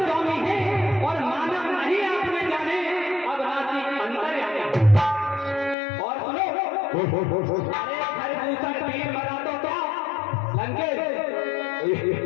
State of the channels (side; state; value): right; drops out; at 5.8 s